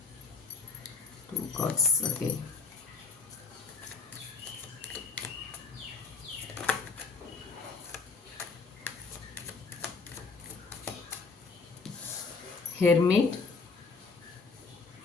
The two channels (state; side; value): quieter; right; 4.6 dB